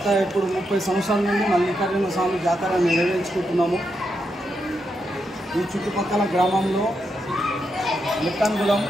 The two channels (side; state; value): both; normal; correlation 0.83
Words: ఇప్పుడు 30 సంవత్సరాల నుండి మల్లికార్జున స్వామి జాతర నిర్వహించుకుంటున్నాము. ఈ చుట్టుపక్కల గ్రామంలో